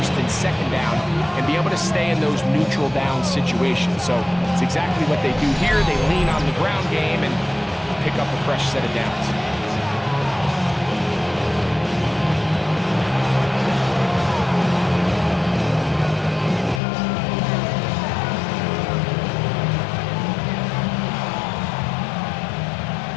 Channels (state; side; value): drops out; right; at 16.8 s